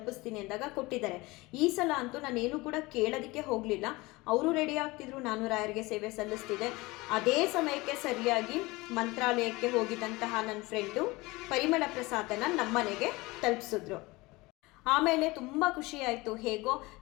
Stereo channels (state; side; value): quieter; right; 22.3 dB